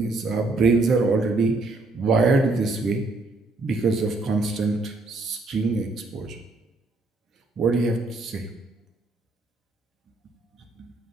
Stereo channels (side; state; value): left; quieter; 3.3 dB